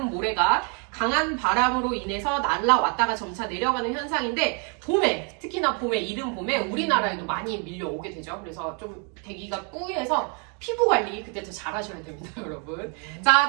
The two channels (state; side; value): quieter; left; 38.0 dB